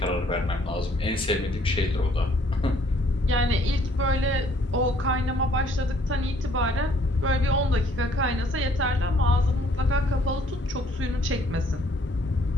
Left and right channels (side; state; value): both; normal; correlation 0.62